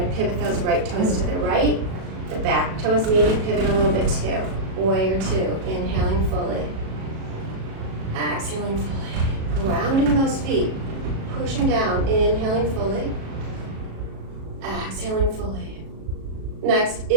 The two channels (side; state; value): left; late; 37 ms